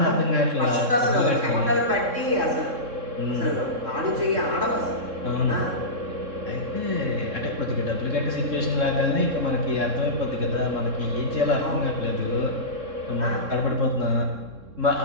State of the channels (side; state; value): left; late; 3.6 ms